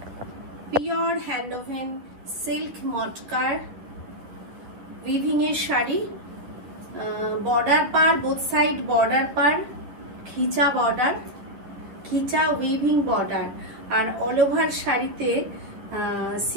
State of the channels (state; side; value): late; left; 10 ms